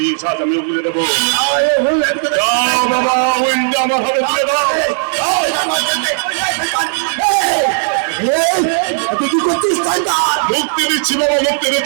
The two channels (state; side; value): silent; left; digital silence